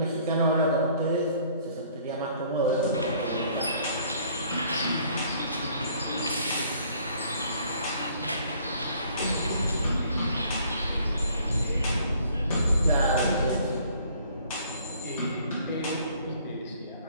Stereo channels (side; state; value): both; inverted; correlation -0.59